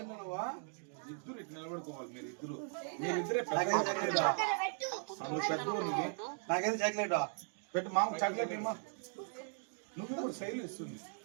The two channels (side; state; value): left; silent; 52 dB below the other